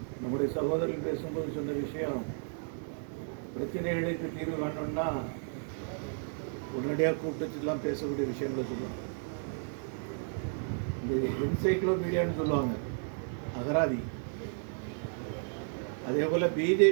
நம்முடைய சகோதரர்கள் பேசும்போது சொன்ன விஷயம், பிரச்சனைகளுக்கு தீர்வு காணணும்னா உடனடியாக கூப்பிட்டுலாம் பேசக்கூடிய விஷயங்களை சொல்லுவாங்க. இந்த என்சைக்ளோபீடியான்னு சொல்லுவாங்க, அகராதி. அதே போல்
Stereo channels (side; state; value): left; silent; 56 dB below the other